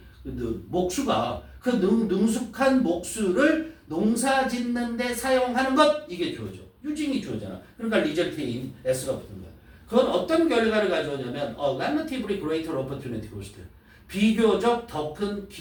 목수가 그 능숙한 목수를 농사 짓는데 사용하는 것 이게 주어져. 유징이 주어잖아. 그러니까 리절트인 S가 붙은 거야. 그건 어떤 결과를 가져오냐면 relatively greater opportunity cost. 비교적 더 큰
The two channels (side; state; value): both; identical; correlation 1.00